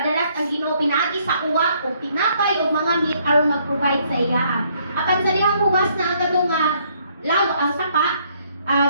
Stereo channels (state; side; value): inverted; both; correlation -0.67